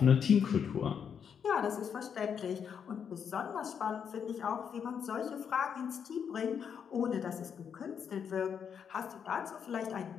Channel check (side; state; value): right; quieter; 7.4 dB